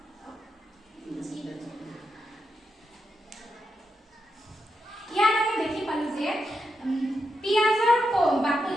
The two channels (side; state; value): both; normal; correlation 0.85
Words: ইয়াত আমি দেখি পালো যে পিয়াজৰ বাকলি